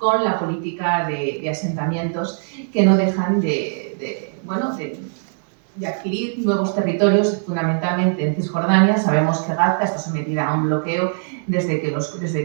la política de asentamientos que no dejan de adquirir nuevos territorios, fundamentalmente en Cisjordania. Sabemos que Gaza está sometida a un bloqueo desde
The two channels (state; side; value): silent; left; digital silence